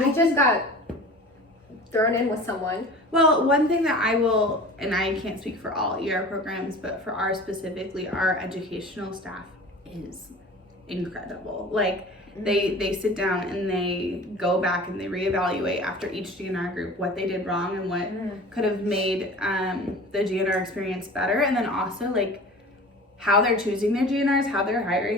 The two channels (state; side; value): normal; both; correlation 0.39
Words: just got thrown in with someone. Well, one thing that I will, and I can't speak for all ER programs, but for ours specifically, our educational staff is incredible. Like, they sit down and they go back and they reevaluate after each GNR group what they did wrong and what could have made the GNR experience better. And then also, like, how they're choosing their GNRs, how they're